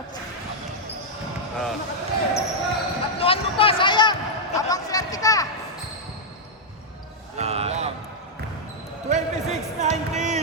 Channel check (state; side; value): normal; both; correlation -0.04